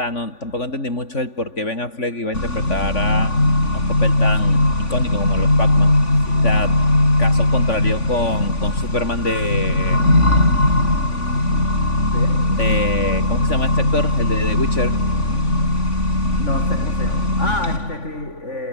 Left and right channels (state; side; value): late; right; 3.5 ms